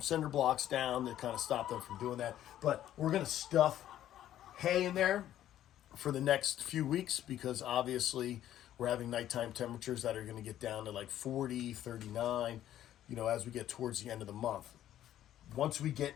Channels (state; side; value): quieter; right; 12.1 dB